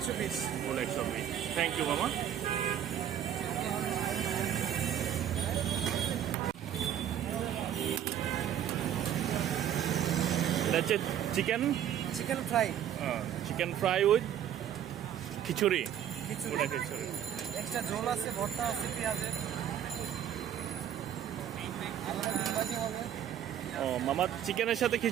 Full 120। Thank you মামা। এটা হচ্ছে chicken fry. Chicken fry with খিচুড়ি। খিচুড়ি। ওটা খিচুড়ি। এক্সট্রা ঝোল আছে, ভর্তা আছে পেঁয়াজের। ও মামা, চিকেনের সাথে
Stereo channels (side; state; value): left; quieter; 10.1 dB